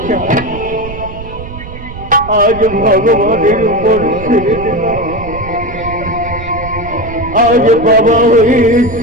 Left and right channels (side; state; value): right; noise; rumble, 12 dB below the sound